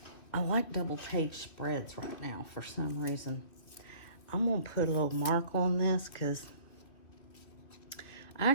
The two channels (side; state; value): right; late; 2.4 ms